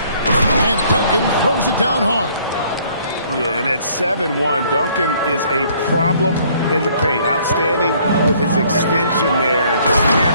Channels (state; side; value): inverted; both; correlation -0.61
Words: And Duncan throws it down hard. Yeah, and at 7-1, Duncan is a problem in the paint. Outstanding with his extension there, just